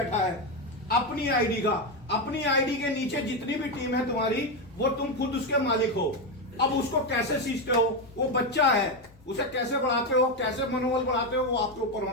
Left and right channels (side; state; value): both; normal; correlation 0.10